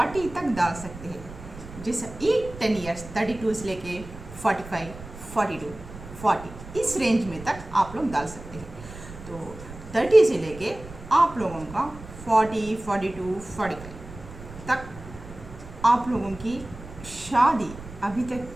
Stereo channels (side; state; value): right; noise; rumble, 15 dB below the sound